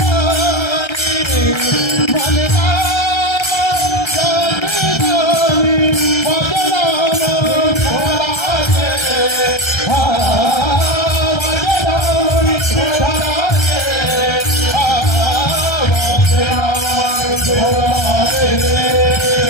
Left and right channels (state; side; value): late; right; 1.3 ms